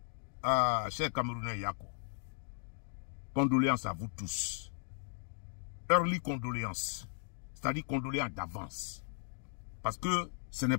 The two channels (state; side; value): silent; right; 53 dB below the other